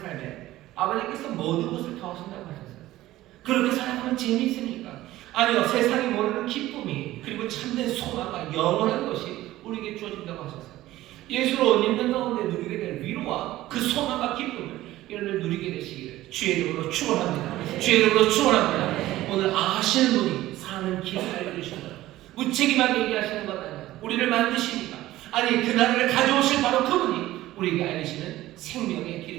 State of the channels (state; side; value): quieter; left; 15.8 dB